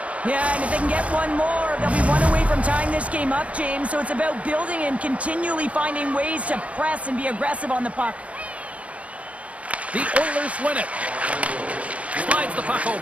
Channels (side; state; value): left; late; 0.065 ms